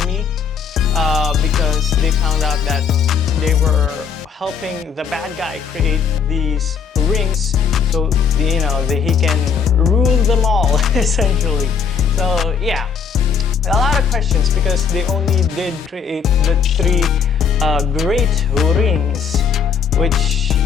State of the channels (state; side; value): quieter; right; 6.6 dB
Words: because they found out that they were helping the bad guy create these rings, so you know he can rule them all essentially. So yeah, a lot of questions because they only did create the 3 great rings, which,